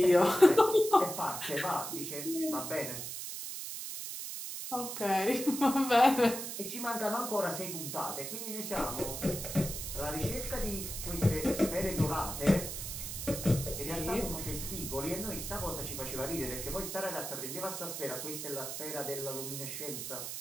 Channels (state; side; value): noise; right; hiss, 6 dB below the sound